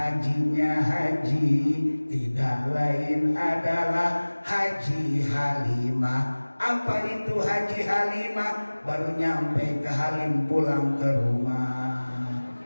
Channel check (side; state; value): both; inverted; correlation -1.00